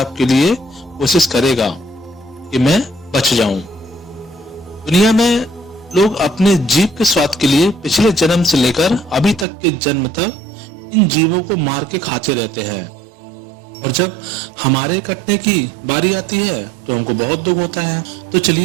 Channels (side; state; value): left; drops out; at 9.5 s